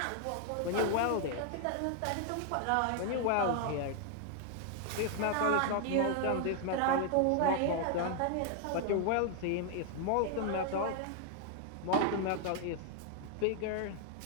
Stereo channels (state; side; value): different; both; correlation 0.00